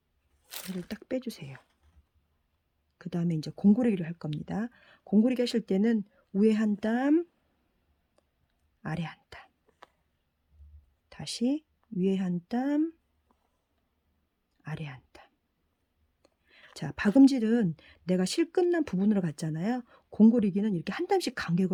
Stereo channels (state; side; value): identical; both; correlation 1.00